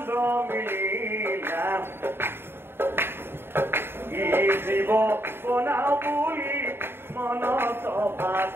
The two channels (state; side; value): late; left; 0.11 ms